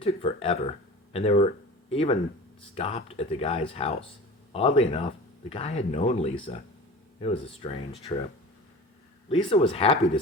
took forever, and they were even stopped at the guy's house. Oddly enough, the guy had known Lisa. It was a strange trip. Lisa was happy to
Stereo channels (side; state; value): both; normal; correlation 0.36